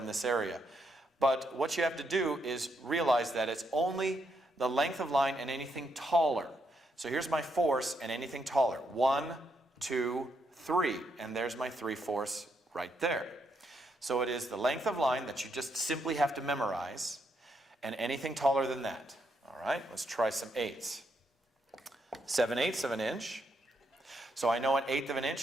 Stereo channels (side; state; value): both; normal; correlation 0.78